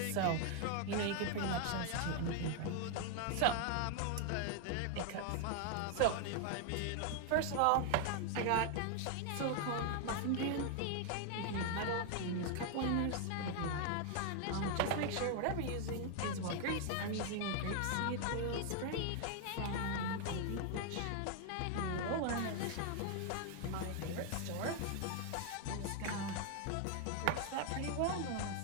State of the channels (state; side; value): different; both; correlation 0.00